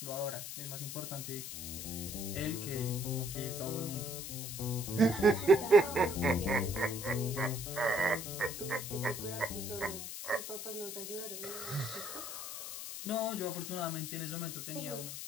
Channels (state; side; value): noise; left; hiss, 7 dB below the sound